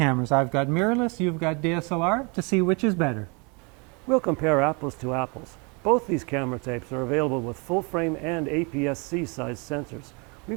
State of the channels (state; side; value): quieter; left; 31.7 dB